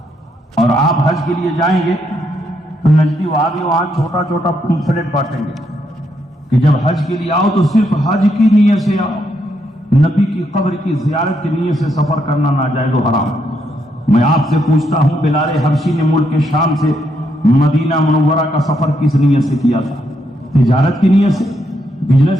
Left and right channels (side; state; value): both; normal; correlation 0.77